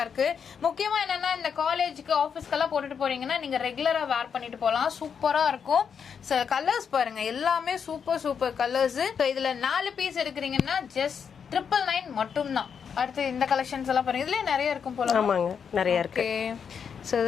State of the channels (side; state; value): right; quieter; 6.9 dB